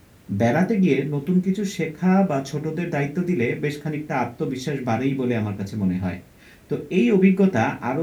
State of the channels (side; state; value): both; identical; correlation 1.00